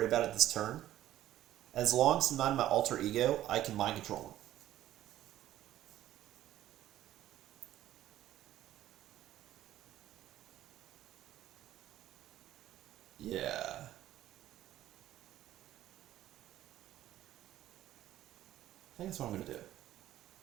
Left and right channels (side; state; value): left; quieter; 13.4 dB